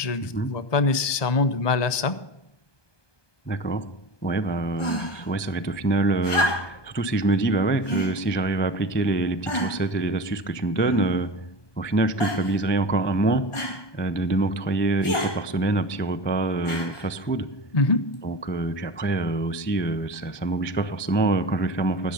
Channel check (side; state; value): right; late; 1.2 ms